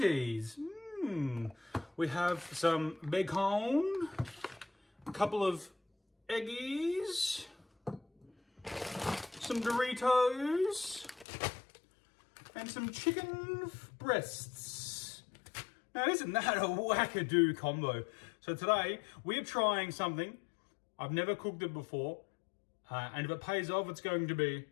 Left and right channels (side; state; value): right; drops out; at 11.2 s